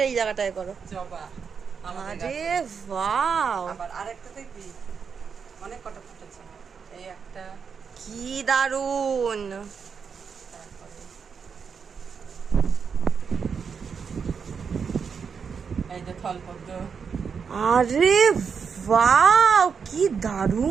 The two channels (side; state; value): left; quieter; 6.2 dB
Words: এই জায়গাটায় করো। জবা। আরে ওয়াও, আবার আরেকটা দেখবি, অনেক কটা ফুটেছে। এই একটা, কি দারুন। এই যে থলপদ্ম। আরে ওয়াও, কি